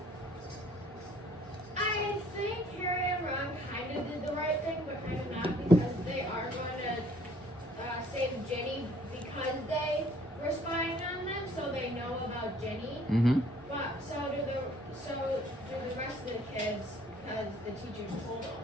I think Harry and Ron kind of did the right thing, but kind of not, because they are going to save Jenny because they were spying on them, so they know about Jenny. Mm-hmm. But so do the rest of the kids, because the teachers told them.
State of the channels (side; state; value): both; normal; correlation 0.58